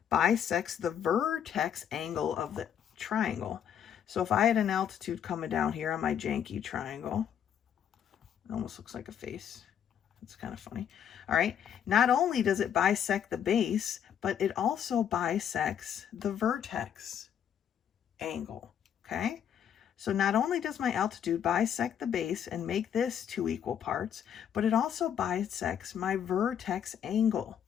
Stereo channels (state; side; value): quieter; right; 8.9 dB